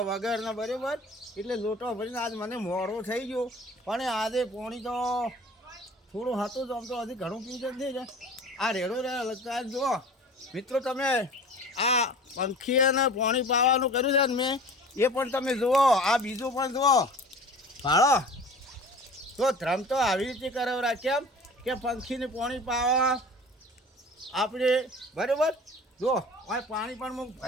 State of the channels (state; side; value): normal; both; correlation 0.42